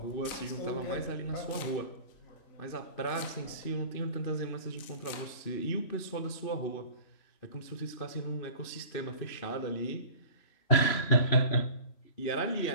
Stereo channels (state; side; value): late; right; 3.0 ms